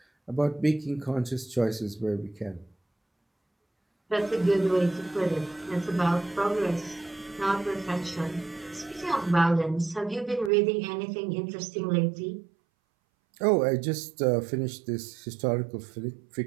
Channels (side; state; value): left; drops out; at 10.5 s